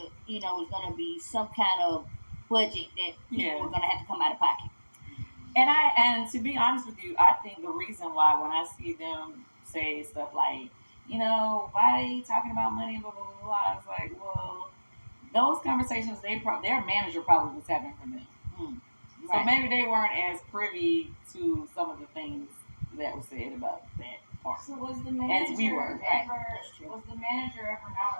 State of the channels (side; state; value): both; inverted; correlation -1.00